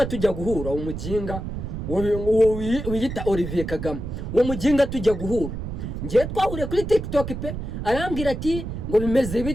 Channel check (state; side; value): noise; right; rumble, 6 dB below the sound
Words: tujya guhura umujinga wiyita Olivier Kagame umujinga tujya guhura ngiye twahuriye kuri TikTok pe arambwira ati ngo bimeze